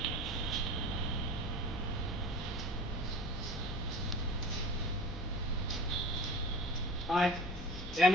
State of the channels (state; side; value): normal; both; correlation 0.38